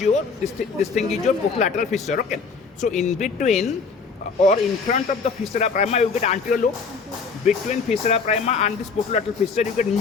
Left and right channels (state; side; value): quieter; right; 5.0 dB